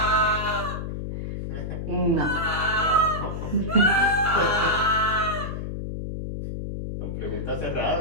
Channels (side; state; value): left; noise; hum, 5 dB below the sound